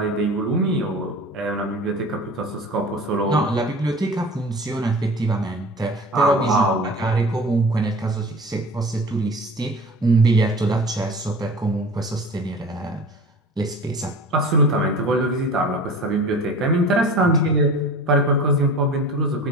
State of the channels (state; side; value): normal; both; correlation 0.38